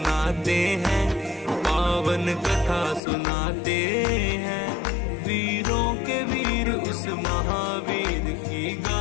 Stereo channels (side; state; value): right; drops out; at 3.0 s